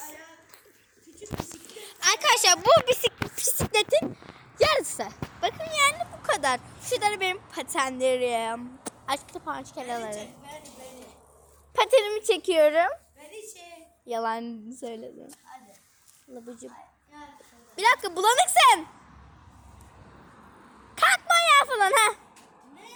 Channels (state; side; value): identical; both; correlation 1.00